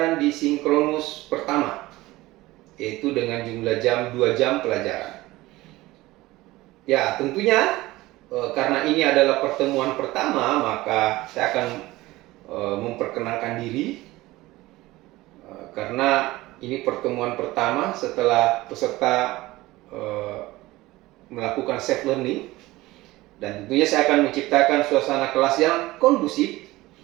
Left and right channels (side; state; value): left; quieter; 18.7 dB